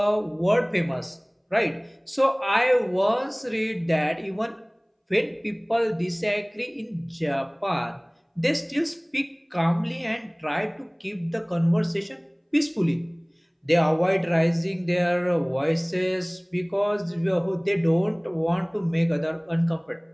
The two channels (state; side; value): identical; both; correlation 1.00